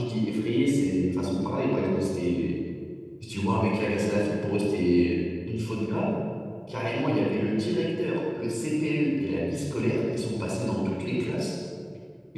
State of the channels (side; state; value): both; identical; correlation 1.00